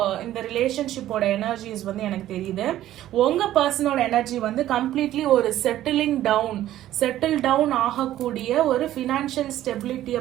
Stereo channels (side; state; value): left; quieter; 13.3 dB